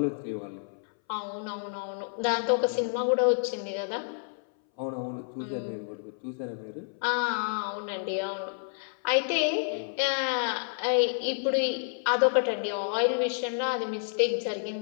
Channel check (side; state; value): right; silent; 58 dB below the other